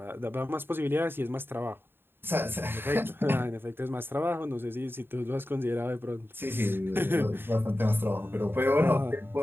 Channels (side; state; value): left; late; 0.10 ms